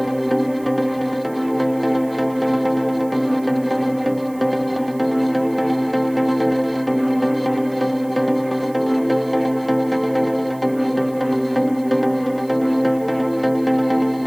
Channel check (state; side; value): noise; right; hiss, 25 dB below the sound